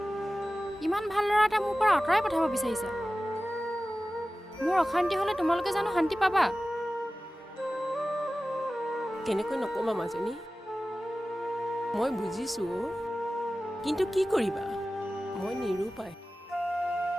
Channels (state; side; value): normal; both; correlation 0.96